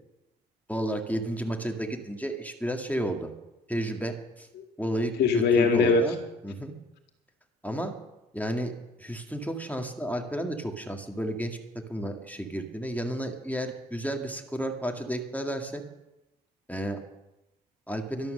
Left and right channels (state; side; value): normal; both; correlation 0.57